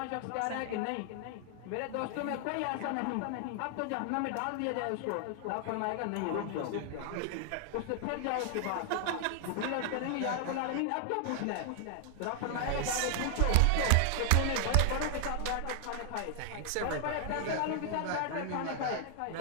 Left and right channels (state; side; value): different; both; correlation 0.00